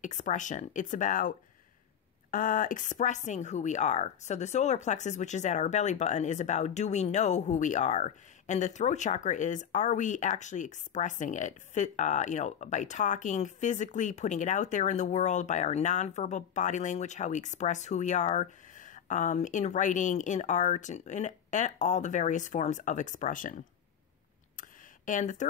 expression. It's about expressing who we are. So the solar plexus, which is at our belly button, is about, do we know who we are? And the throat chakra is, are we actually expressing it? By talking, physically putting it out there in the world, by our nonverbal body language, how we express who we are, in writing, in art, and all the various forms of expression. And the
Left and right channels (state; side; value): quieter; right; 8.6 dB